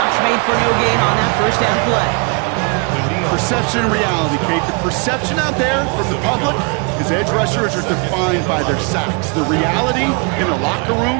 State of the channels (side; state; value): left; quieter; 33.3 dB